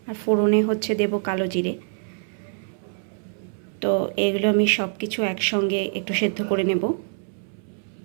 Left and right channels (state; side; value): silent; left; 62 dB below the other